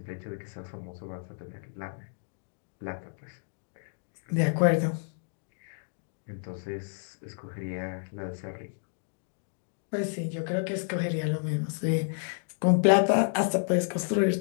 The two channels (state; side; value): silent; right; digital silence